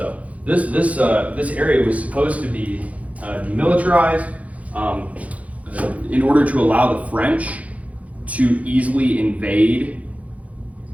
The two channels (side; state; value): left; late; 0.067 ms